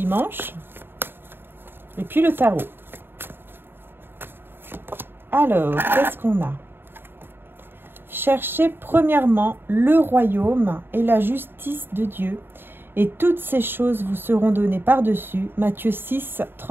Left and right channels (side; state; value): left; late; 0.10 ms